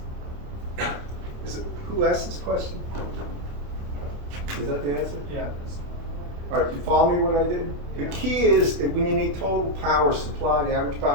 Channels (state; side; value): late; left; 28 ms